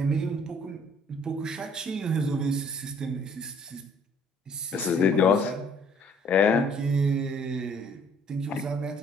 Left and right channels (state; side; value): normal; both; correlation 0.59